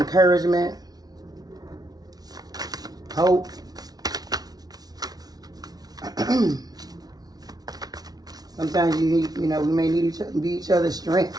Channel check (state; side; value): late; left; 0.19 ms